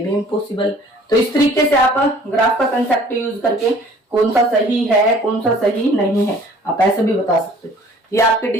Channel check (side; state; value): both; normal; correlation 0.52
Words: इम्पॉसिबल। तो इस तरीके से आप ग्राफ का कंसेप्ट यूज करके कौन सा सही है कौन सा सही नहीं है आप ऐसे भी बता सकते हो। ये आपके